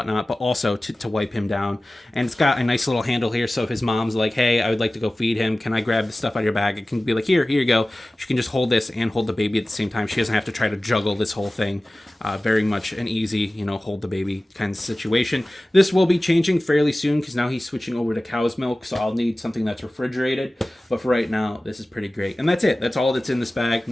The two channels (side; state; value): both; normal; correlation 0.97